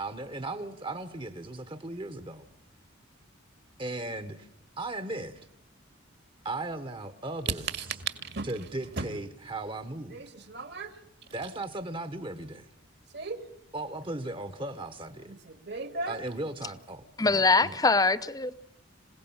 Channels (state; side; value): normal; both; correlation 0.21